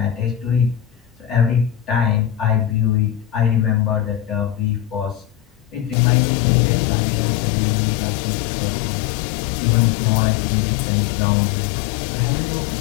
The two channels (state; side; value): drops out; right; at 6.0 s